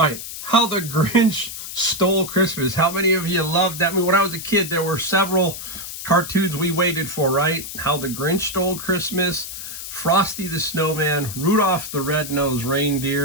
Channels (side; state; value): left; noise; hiss, 9 dB below the sound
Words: right. How the Grinch Stole Christmas. How many of you loved that? I mean, when I was a kid, there were several cartoons we waited for, right? How the Grinch Stole Christmas, Frosty the Snowman, Rudolph the Red-Nosed